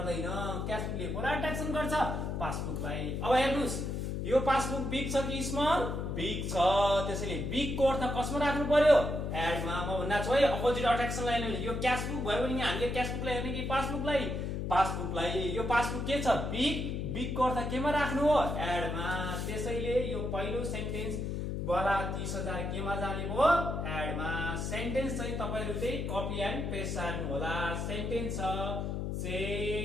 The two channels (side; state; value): left; noise; hum, 2 dB below the sound